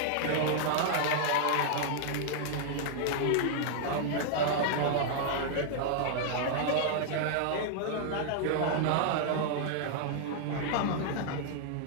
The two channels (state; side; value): different; both; correlation -0.01